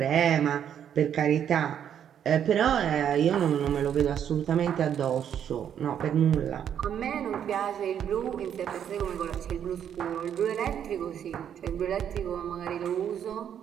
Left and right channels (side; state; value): left; quieter; 9.1 dB